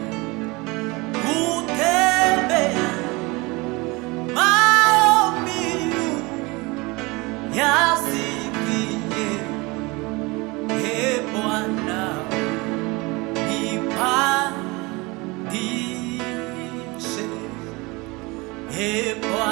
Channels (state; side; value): quieter; left; 24.6 dB